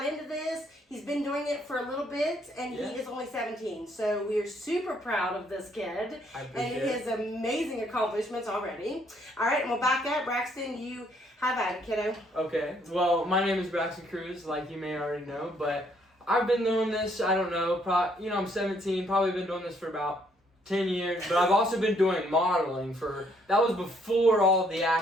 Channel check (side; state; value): both; normal; correlation 0.68